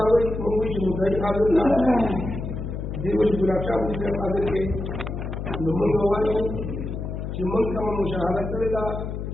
دیو چې ګلاب شاه دې حاضر کې نو موږ وایو چې موږ کوم مشاهده کړې ده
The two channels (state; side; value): noise; left; hum, 5 dB below the sound